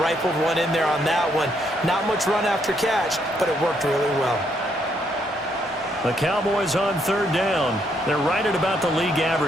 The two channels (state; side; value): normal; both; correlation 0.73